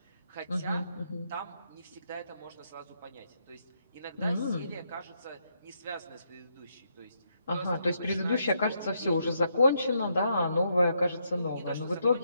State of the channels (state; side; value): inverted; both; correlation -0.78